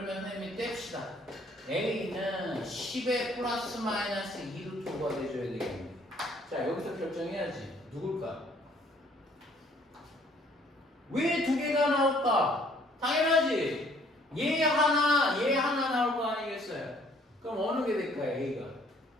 선생님이 뗍시다. a는 10의 플러스 마이너스 2루트 5가 돼줘야 되겠네. 자, 여기서 결정해야지. 누굴까? 왜 두 개가 나올까? 당연하지. 얘 하나 나올 거 아니겠어요? 그럼 어느 게 될까요? A가?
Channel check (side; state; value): both; normal; correlation 0.61